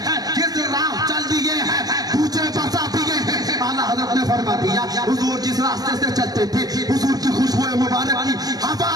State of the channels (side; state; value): left; late; 0.19 ms